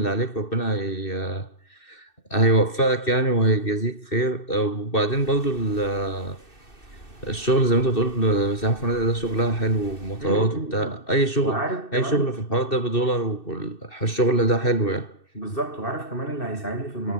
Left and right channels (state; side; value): late; right; 2.6 ms